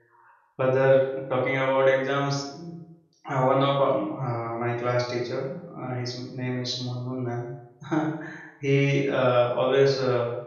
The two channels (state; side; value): identical; both; correlation 1.00